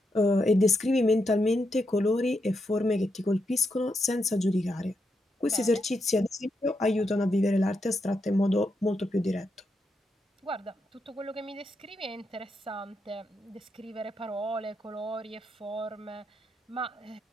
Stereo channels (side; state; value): both; normal; correlation 0.83